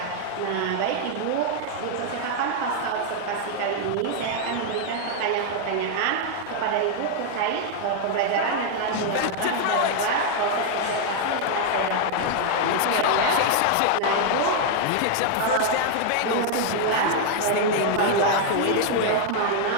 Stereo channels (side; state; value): both; different; correlation 0.00